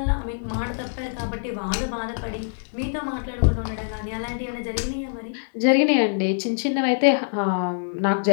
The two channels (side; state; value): right; silent; 60 dB below the other